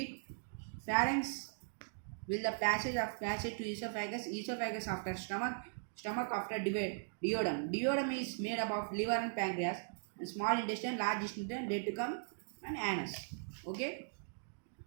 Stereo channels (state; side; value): silent; left; digital silence